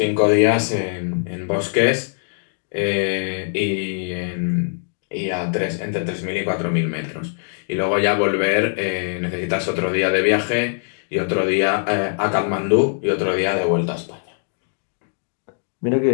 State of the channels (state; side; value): silent; right; 62 dB below the other